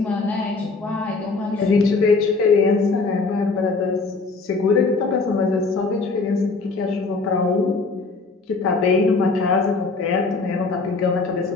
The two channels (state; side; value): quieter; right; 4.0 dB